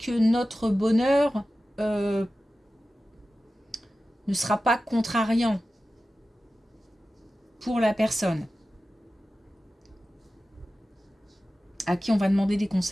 notre bonheur ne sera pas contrariant pour la personne à qui on va demander des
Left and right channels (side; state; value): both; normal; correlation 0.94